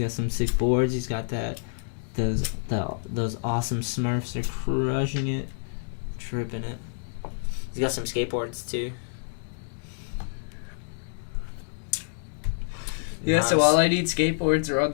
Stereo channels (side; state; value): right; silent; digital silence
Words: some sick boards. He's got those awesome Smurfs. They're crushing it. Tripping it. He's got some skateboards too. Yeah, Nice. so all I need skateboards are on